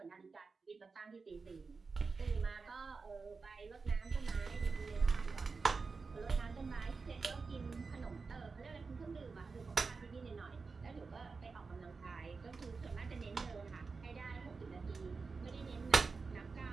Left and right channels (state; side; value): quieter; left; 4.5 dB